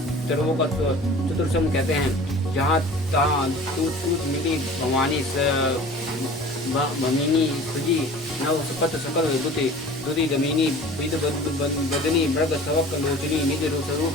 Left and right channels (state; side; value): normal; both; correlation 0.43